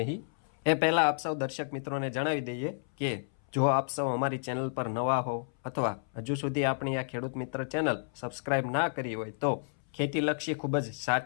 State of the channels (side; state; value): right; silent; 57 dB below the other